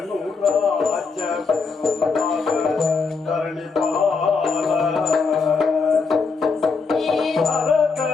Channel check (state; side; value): quieter; right; 4.7 dB